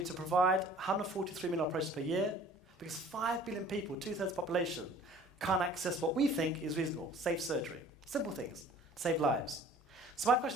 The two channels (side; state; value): both; normal; correlation 0.50